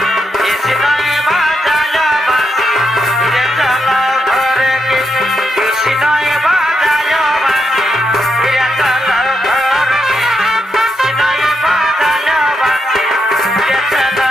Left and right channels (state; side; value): normal; both; correlation 0.81